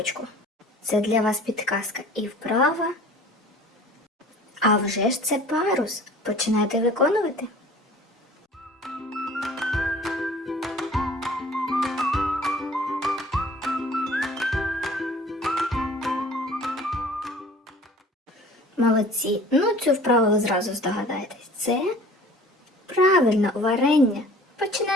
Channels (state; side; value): normal; both; correlation 0.47